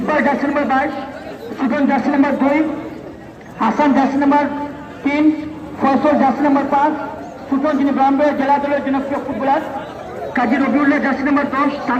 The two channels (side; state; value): both; identical; correlation 1.00